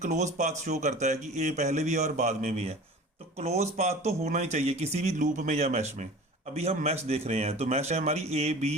पाथ शो करता है कि ए पहले भी है और बाद में भी है, तो क्लोज पाथ तो होना ही चाहिए किसी भी लूप में या मैश में। अभी हम मैश देख रहे हैं, तो मैश है हमारी ए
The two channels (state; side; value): normal; both; correlation 0.40